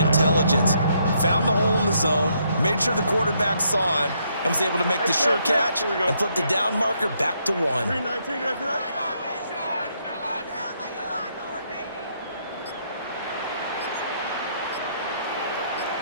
Found the hole in the zone, made sure the quarterback saw him, and was able to make the sure catch and flip the down marker back to 1. 319,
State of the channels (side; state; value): both; inverted; correlation -0.74